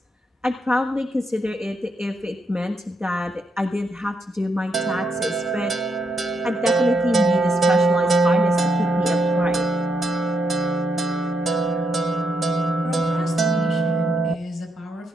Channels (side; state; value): both; normal; correlation 0.79